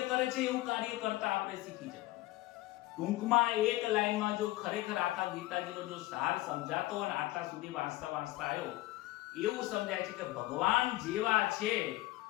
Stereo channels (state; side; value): quieter; right; 18.0 dB